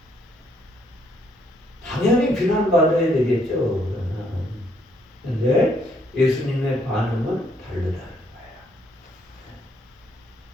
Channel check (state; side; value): normal; both; correlation 0.70